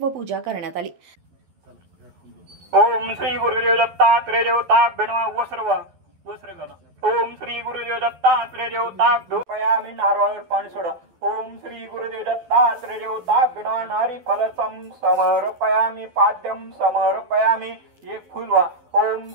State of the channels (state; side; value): late; left; 12 ms